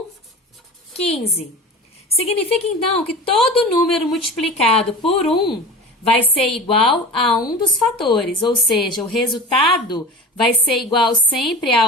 15. Significa, então, que todo número multiplicado por 1 vai ser igual a um dos fatores, ou seja, o resultado vai ser igual sempre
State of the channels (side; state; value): both; normal; correlation 0.35